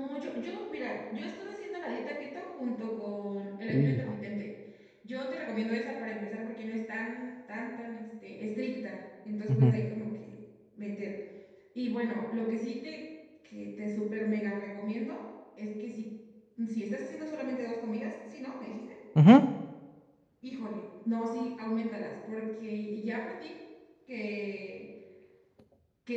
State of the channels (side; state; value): both; identical; correlation 1.00